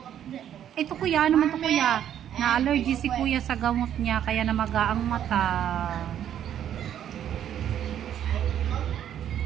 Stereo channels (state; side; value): quieter; left; 10.2 dB